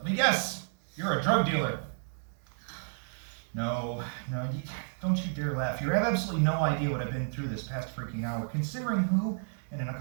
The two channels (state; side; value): silent; left; digital silence